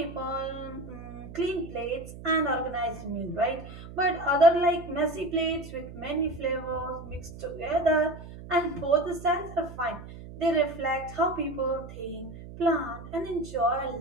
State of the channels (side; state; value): right; noise; hum, 14 dB below the sound